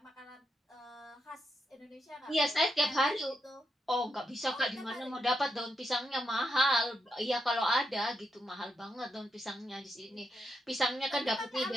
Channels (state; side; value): normal; both; correlation 0.83